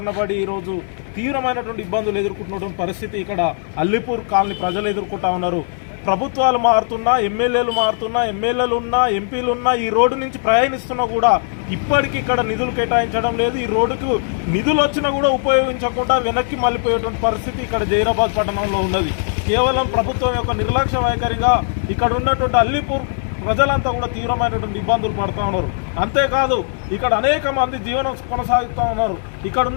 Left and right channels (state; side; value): silent; right; digital silence